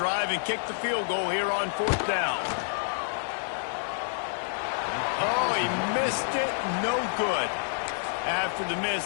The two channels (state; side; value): silent; right; 59 dB below the other